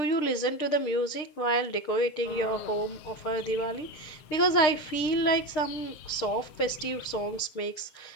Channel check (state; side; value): late; right; 6.6 ms